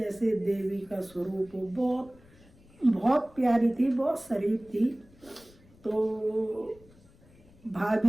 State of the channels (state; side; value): noise; left; rumble, 26 dB below the sound